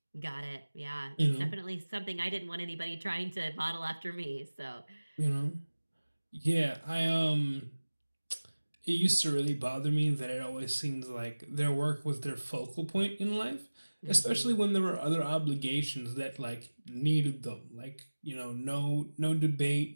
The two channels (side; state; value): both; inverted; correlation -1.00